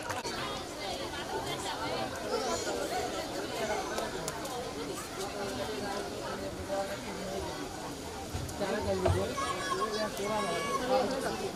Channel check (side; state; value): both; identical; correlation 1.00